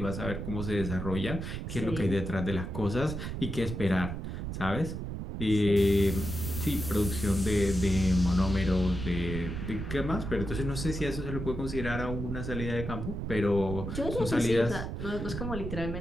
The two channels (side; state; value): right; noise; rumble, 5 dB below the sound